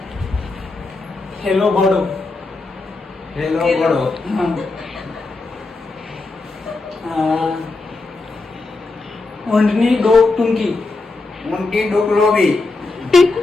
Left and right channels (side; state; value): right; quieter; 3.4 dB